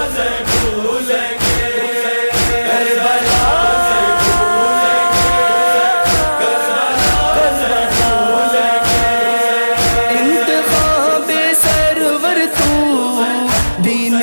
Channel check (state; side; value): inverted; both; correlation -1.00